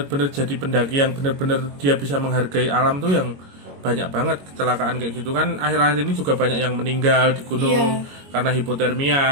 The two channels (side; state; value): left; late; 22 ms